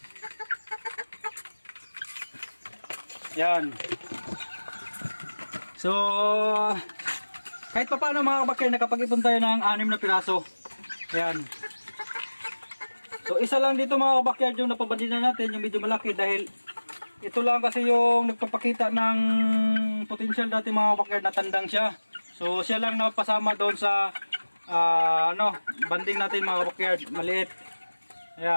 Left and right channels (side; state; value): both; inverted; correlation -1.00